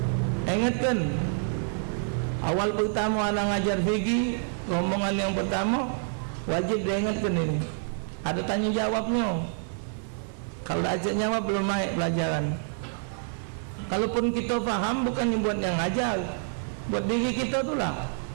ingatkan awal pertama anak ngajar fikih, rombongan yang pertama wajib diingatkan ini, ada tanya jawabnya. Kalau ajak jawab belum naik pelajaran. Kalaupun kita faham, bukan buat yang ngajar, buat diri kita itulah.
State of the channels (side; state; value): left; silent; 60 dB below the other